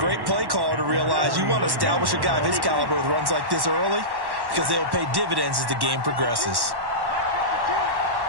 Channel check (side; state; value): left; late; 1.1 ms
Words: play caller to realize you want to establish a guy of his caliber with runs like this early because they'll pay dividends as the game progresses.